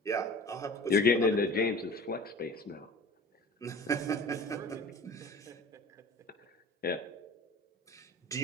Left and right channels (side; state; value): both; normal; correlation 0.41